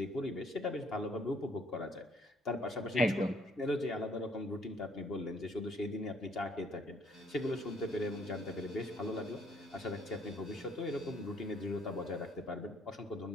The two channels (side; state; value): both; normal; correlation 0.64